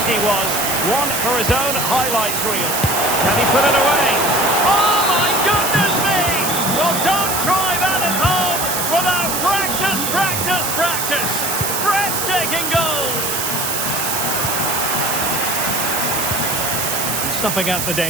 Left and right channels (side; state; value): right; noise; hiss, 1 dB below the sound